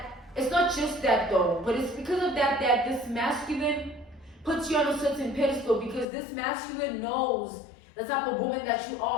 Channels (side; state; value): right; drops out; at 6.1 s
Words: It's not just that though, but it's because of that this masculine puts you on a certain pedestal, because this masculine knows the type of woman that you